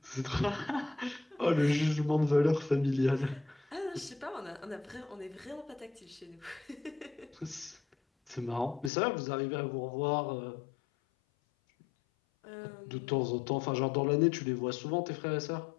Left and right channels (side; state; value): right; drops out; at 8.9 s